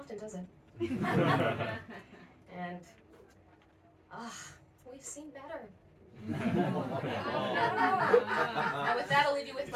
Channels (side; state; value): both; identical; correlation 1.00